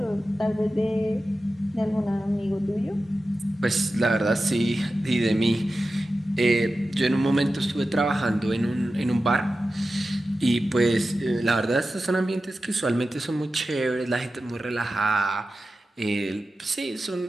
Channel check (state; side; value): normal; both; correlation 0.93